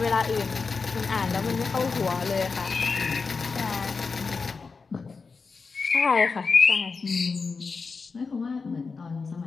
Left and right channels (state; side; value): quieter; right; 4.7 dB